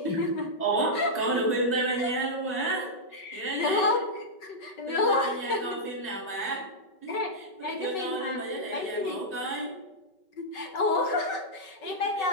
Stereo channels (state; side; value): late; right; 5.3 ms